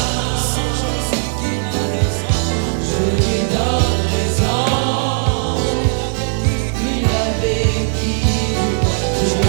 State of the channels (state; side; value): silent; left; digital silence